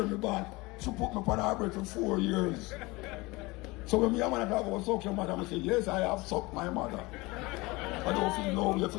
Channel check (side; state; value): right; quieter; 23.1 dB